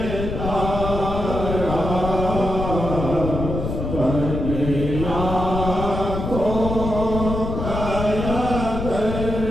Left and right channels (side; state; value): left; noise; rumble, 4 dB below the sound